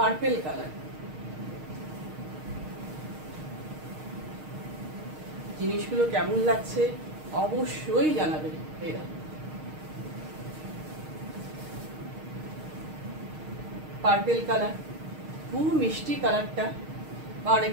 কালার। জিনিসগুলো কেমন লাগছে অবশ্যই জানাবে। এরা পার্পেল কালার, খুব মিষ্টি কালারটা, বা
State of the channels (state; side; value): late; left; 6.5 ms